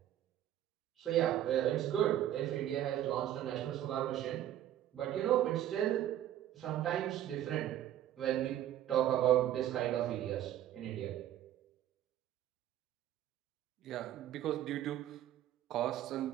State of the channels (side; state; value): left; quieter; 12.1 dB